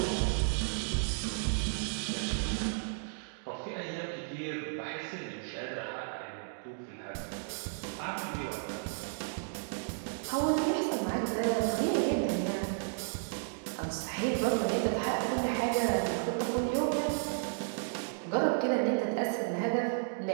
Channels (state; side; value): silent; left; digital silence